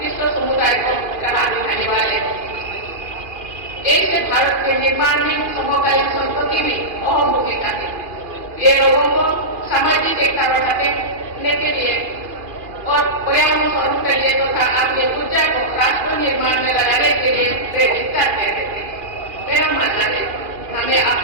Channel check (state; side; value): late; left; 2.5 ms